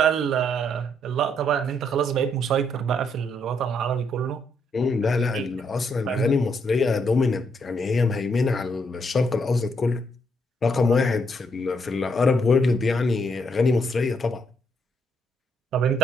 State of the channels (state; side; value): normal; both; correlation 0.74